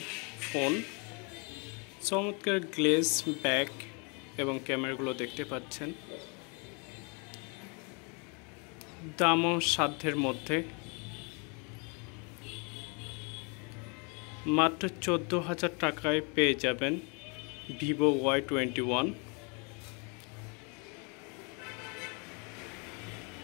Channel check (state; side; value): quieter; right; 33.9 dB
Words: ফোন। চমৎকার গ্লেজ ব্যাক এবং ক্যামেরাগুলো দেখতে পাচ্ছেন। দামও সাধ্যের মধ্যে, মাত্র 14,000 টাকায় পেয়ে যাবেন ভিভো Y21।